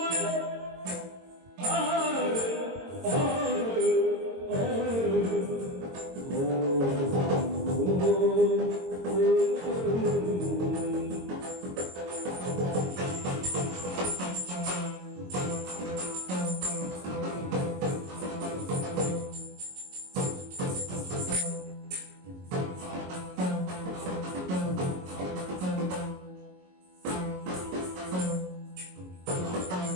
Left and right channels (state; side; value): late; left; 22 ms